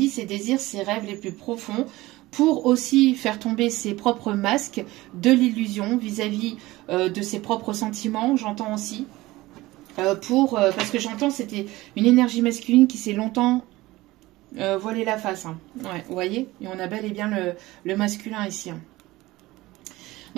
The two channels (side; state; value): left; quieter; 18.9 dB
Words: ses désirs, ses rêves les plus profonds, pour aussi faire tomber ses propres masques de l'illusion vis-à-vis de ses propres sentiments, j'entends aussi. Parce que j'entends c'était une énergie masculine qui s'est longtemps voilé la face. Hein. Ouais, vous voyez? Et on a bel et bien le masculin ici. Hein.